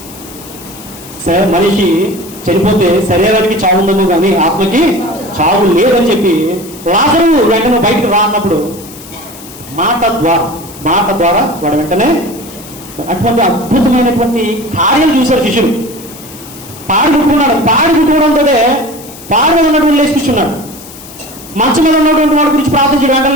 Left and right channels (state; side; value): noise; left; hiss, 17 dB below the sound